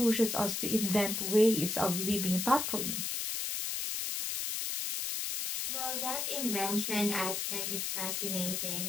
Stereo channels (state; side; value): noise; left; hiss, 2 dB below the sound